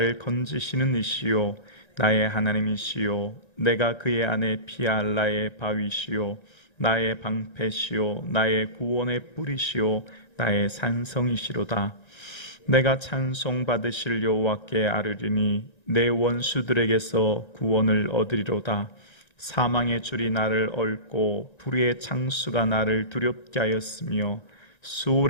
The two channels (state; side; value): late; right; 1.9 ms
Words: 건지시는 이시요 나의 하나님이시요 내가 그의 안에 피알라의 바위시요 나의 방패시요 나의 구원의 뿌리시요 나의 산성이시로다. 내가 찬송받으실 여호와께 아뢰리니 내 원수들에게서 구원을 얻으리로다. 사망의 줄이 나를 얽고 불의의 창수가 나를 두렵게 하였으며